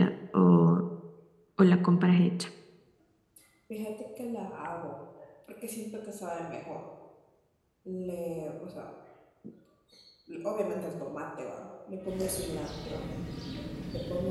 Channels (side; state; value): both; identical; correlation 1.00